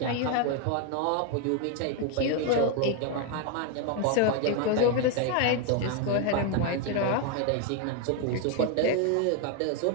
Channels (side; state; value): both; different; correlation 0.01